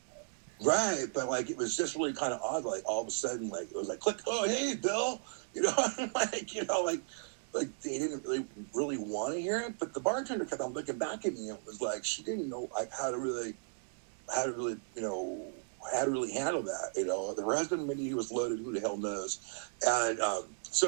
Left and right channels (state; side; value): silent; left; digital silence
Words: Right, but like it was just really kind of odd. Like all of a sudden, like it was like click. Oh, hey, Bill. Like they didn't really want to hear it. But the bartender kept on looking back at me and was like, she didn't know like how to really handle that. Her husband, maybe he was loaded. Who the hell knows? And